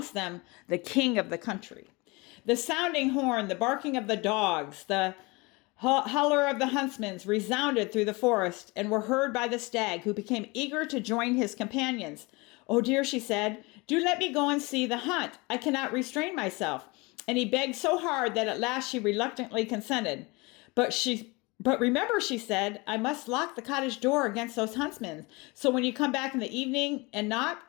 them the king of the country. The sounding horn, the barking of the dogs, the holler of the huntsmen resounded through the forest and were heard by the stag, who became eager to join his companions. "Oh dear," she said, "do let me go and see the hunt. I cannot restrain myself." And he begged so hard that at last she reluctantly consented. But remember," she said, "I must lock the cottage door against those huntsmen. So when you come back in the evening and knock,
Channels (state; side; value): quieter; right; 25.7 dB